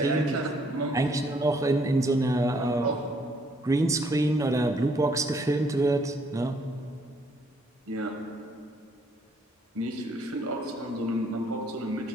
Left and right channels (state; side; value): normal; both; correlation 0.67